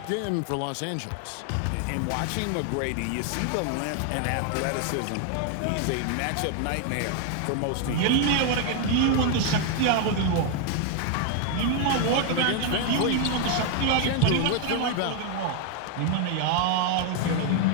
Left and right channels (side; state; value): both; different; correlation 0.01